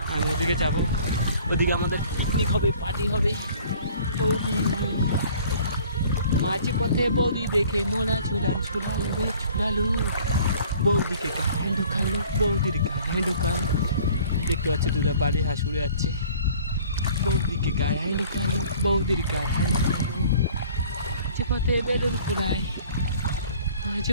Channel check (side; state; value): both; inverted; correlation -0.52